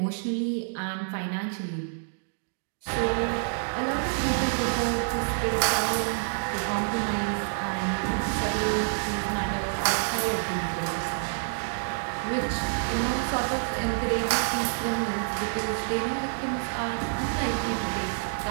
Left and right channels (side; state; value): left; silent; digital silence